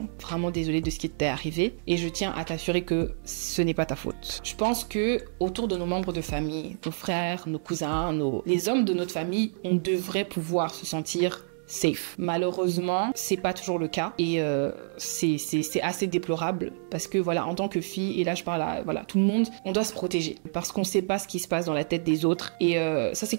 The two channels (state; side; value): silent; left; digital silence